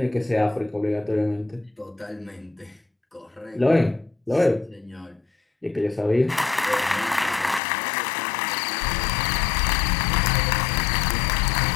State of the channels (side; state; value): right; drops out; at 7.6 s